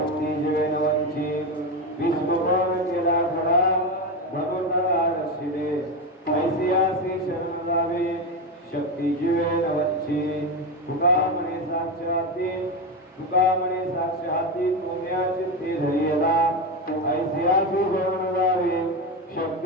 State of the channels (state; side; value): normal; both; correlation 0.15